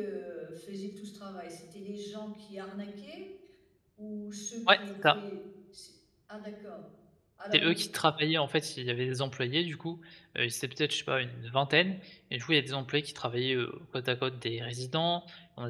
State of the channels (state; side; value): identical; both; correlation 1.00